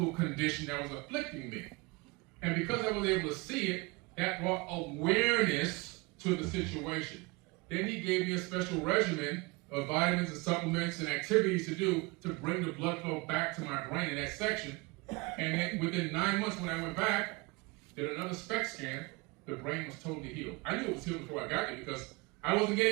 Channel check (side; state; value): left; quieter; 25.9 dB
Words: condition that was afflicting me. And because I was able to see it, that brought awareness to the situation. Then he gave me a special regimen of vitamins and supplements and activities to do to bring the blood flow back to my brain in that section. And then within 9 months when I went back, did another SPECT scan, the brain was totally healed. I knew it was healed before I got there because I wasn't